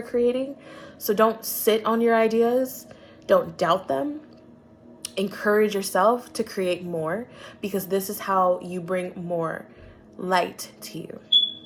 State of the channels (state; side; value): identical; both; correlation 1.00